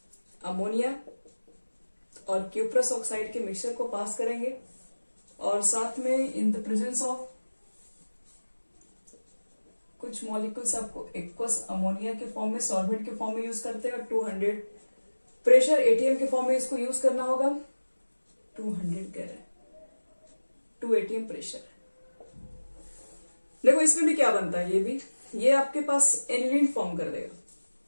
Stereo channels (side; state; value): both; inverted; correlation -1.00